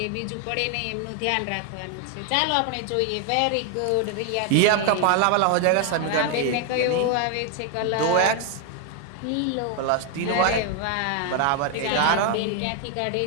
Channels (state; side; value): different; both; correlation 0.01